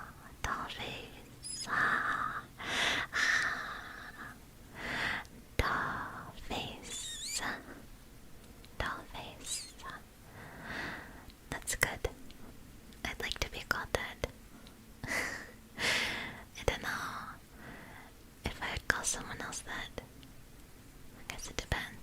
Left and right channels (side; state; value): both; identical; correlation 1.00